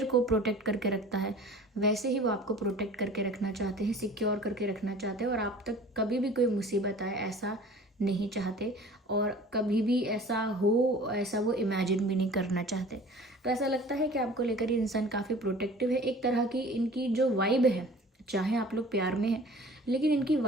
को प्रोटेक्ट करके रखता है, वैसे ही वो आपको प्रोटेक्ट करके रखना चाहते हैं, सिक्योर करके रखना चाहते हैं। और आप तक कभी भी कोई मुसीबत आए ऐसा नहीं चाहते, और कभी भी ऐसा हो ऐसा वो इमेजिन भी नहीं करना चाहते। तो ऐसा लगता है कि आपको लेकर ये इंसान काफ़ी प्रोटेक्टिव है। एक तरह की इनकी जो वाइब है, चाहे आप लोग प्यार में हैं, लेकिन इनकी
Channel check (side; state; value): both; normal; correlation 0.45